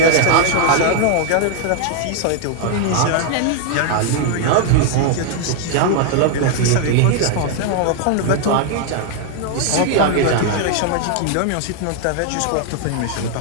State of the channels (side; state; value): both; different; correlation 0.00